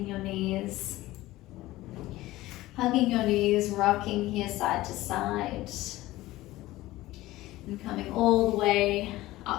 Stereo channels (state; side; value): quieter; right; 17.4 dB